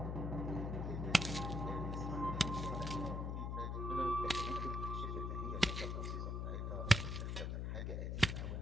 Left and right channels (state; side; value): noise; left; hum, 1 dB below the sound